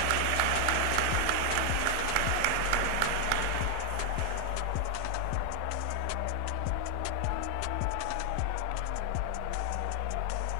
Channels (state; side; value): different; both; correlation 0.00